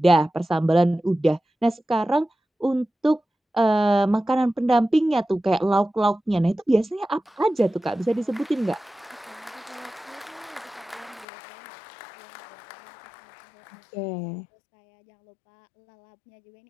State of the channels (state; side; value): drops out; right; at 11.2 s